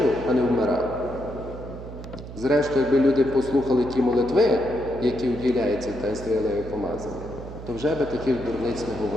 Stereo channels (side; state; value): right; noise; hum, 12 dB below the sound